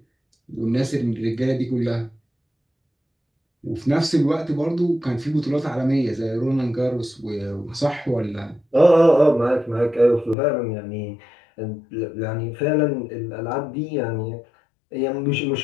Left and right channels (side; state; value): right; drops out; at 10.4 s